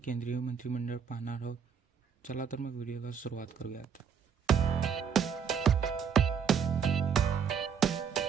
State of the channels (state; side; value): quieter; left; 7.1 dB